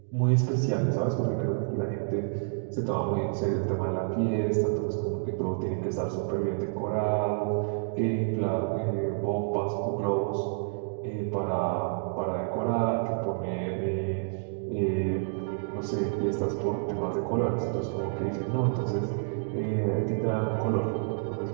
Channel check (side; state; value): left; silent; digital silence